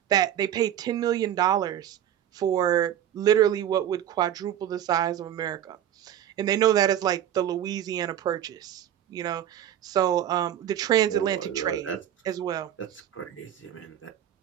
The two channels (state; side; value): quieter; left; 10.8 dB